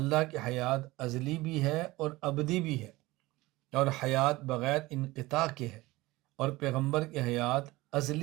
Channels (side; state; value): left; quieter; 19.9 dB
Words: کی حیات ازلی بھی ہے اور ابدی بھی ہے، اور حیات بغیر انقطاع کے ہے، اور پیغمبر کی حیات